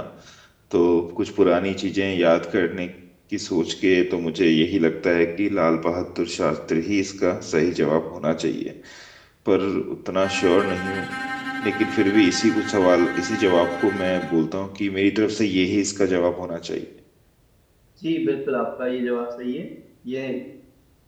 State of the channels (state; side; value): identical; both; correlation 1.00